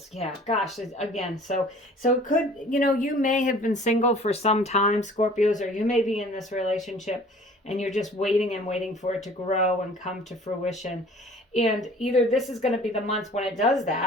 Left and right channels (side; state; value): both; normal; correlation 0.49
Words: Yeah, gosh, again, so it could, you know, you may have been single for some time, Scorpios, or you may be in this relationship and you're just waiting and waiting for it to grow and come to fruition. And either this is going to be the month when it does